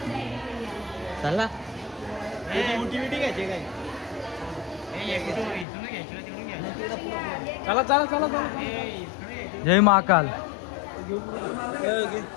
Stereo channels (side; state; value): right; drops out; at 5.7 s